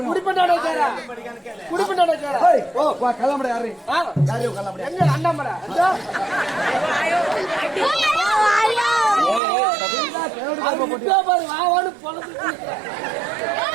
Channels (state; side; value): drops out; left; at 9.4 s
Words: குடிப்பண்டாட கேரா. குடிப்பண்டாட கேரா. ஏய், வா கிளம்புற யாரு? யாரு கிளம்புற? எங்க அண்ணாமலை? அதோ. அது இப்ப பாரு வாவான்னு பொளந்து.